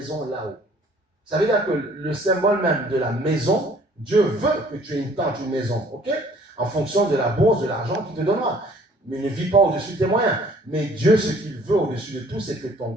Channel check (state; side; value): normal; both; correlation 0.56